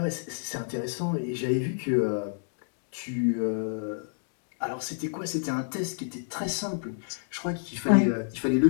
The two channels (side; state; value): right; silent; digital silence